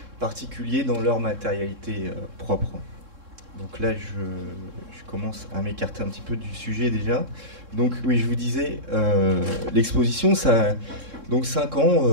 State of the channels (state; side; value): late; left; 3.7 ms